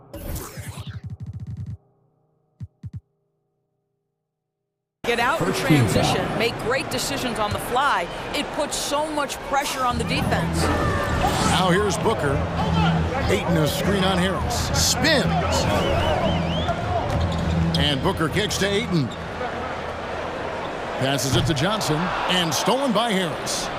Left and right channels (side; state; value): both; identical; correlation 1.00